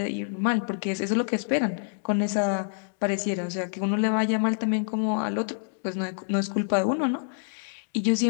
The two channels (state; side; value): silent; right; digital silence